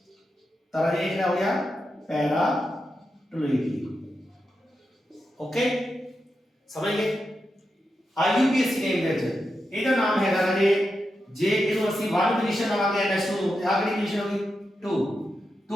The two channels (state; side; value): normal; both; correlation 0.88